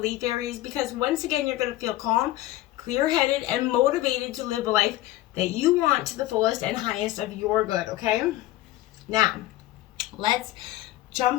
Aries, because once again, you're going to feel calm, clear-headed, and motivated to live a life that you want to the fullest and highest of your good, okay? Now, let's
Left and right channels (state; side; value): quieter; right; 16.1 dB